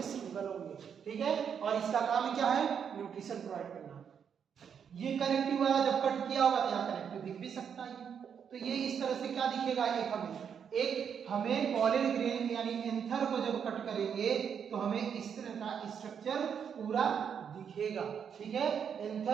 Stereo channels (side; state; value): left; quieter; 7.5 dB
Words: सिंगल होंगे। ठीक है, और इसका काम क्या है? न्यूट्रिशन प्रोवाइड करना। ये कनेक्टिव वाला जब कट किया होगा तो यहाँ कनेक्टिव दिख भी सकता है। तो ये इस तरह से क्या दिखेगा? एक हमें पॉलन ग्रेन यानी एंथर को जब कट करेंगे तो हमें इस तरह का स्ट्रक्चर पूरा दिखेगा। ठीक है,